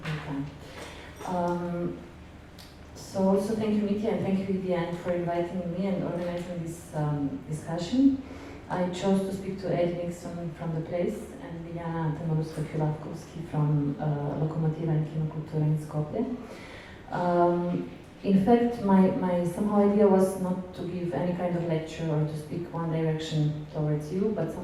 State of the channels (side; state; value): both; identical; correlation 1.00